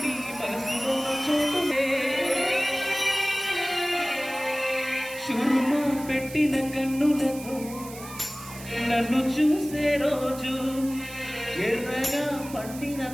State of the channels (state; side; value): noise; right; hiss, 15 dB below the sound